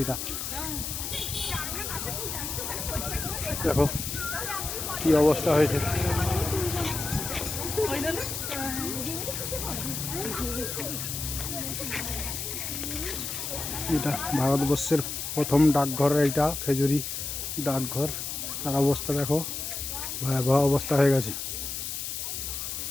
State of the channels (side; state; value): left; noise; hiss, 4 dB below the sound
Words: এইটা। দেখো কি অবস্থা হয়েছে। এটা ভারতবর্ষের প্রথম ডাকঘর, এইটা খেজুরি ডাকঘর। তার অবস্থা দেখো, ভয়াবহ অবস্থা হয়ে গেছে,